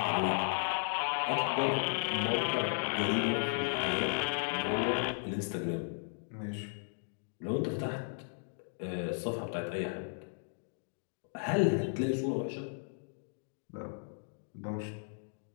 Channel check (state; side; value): silent; right; digital silence